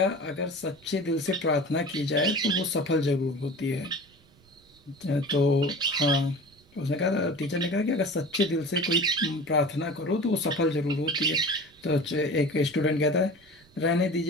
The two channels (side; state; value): right; noise; rumble, 29 dB below the sound